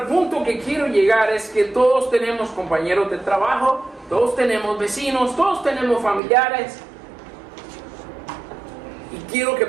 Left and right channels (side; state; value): left; drops out; at 6.2 s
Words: punto que quiero llegar es que todos tenemos compañeros de trabajo, todos tenemos vecinos, todos tenemos familiares. Y quiero que